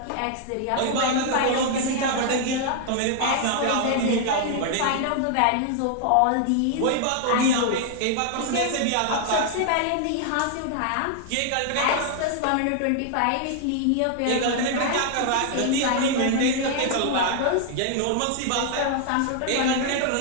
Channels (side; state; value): both; different; correlation 0.00